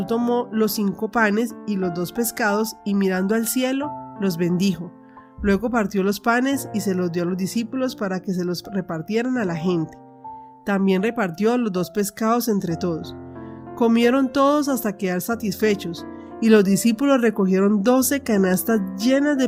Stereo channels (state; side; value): identical; both; correlation 1.00